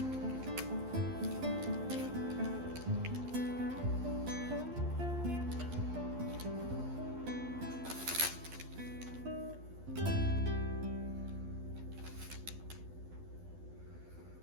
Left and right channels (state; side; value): late; left; 12 ms